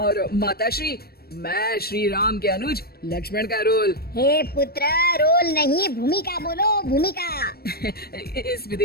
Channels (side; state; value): right; late; 0.45 ms